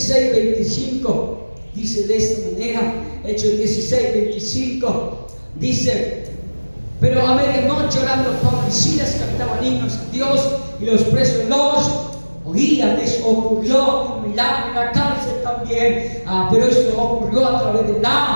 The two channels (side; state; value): both; inverted; correlation -1.00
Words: dice de esta manera. Hechos 16:25 dice: pero a medianoche, orando, Pablo y Silas cantaban himnos a Dios, y los presos los oían. Eso ocurrió un milagro en la cárcel también, pero esto ocurrió a través de